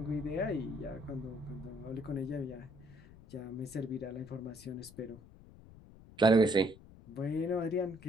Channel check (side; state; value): left; noise; rumble, 20 dB below the sound